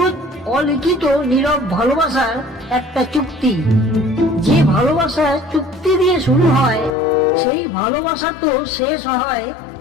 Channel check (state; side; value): drops out; right; at 6.9 s